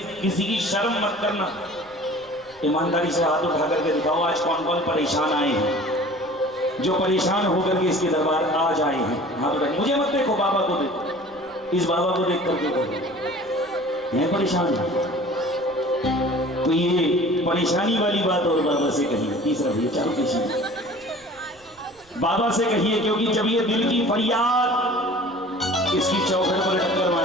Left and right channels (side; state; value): right; noise; rumble, 30 dB below the sound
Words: किसी की शर्म मत करना, ईमानदारी से हाथ उठा करके दिखाओ आज कौन कौन परेशान आए हैं, जो परेशान होकर के इसके दरबार आज आए हैं। हाथ उठा, मुझे मत देखो, बाबा को देखो, इस बाबा को देख करके देखो, ये परेशान है। तो ये परेशानी वाली बात और बाबा से कहिए। तीसरा भैया, चारों पेशी बाबा से कहिए, क्योंकि जब ये दिल की फरियाद इसकी चौखट पर टक्कर